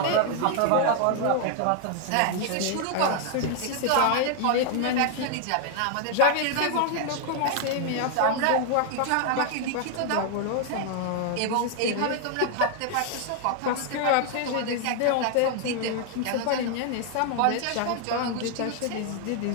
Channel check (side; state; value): both; different; correlation 0.00